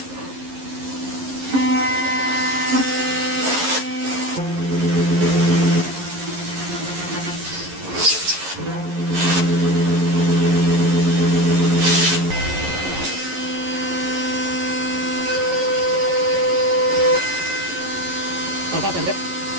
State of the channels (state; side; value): late; left; 11 ms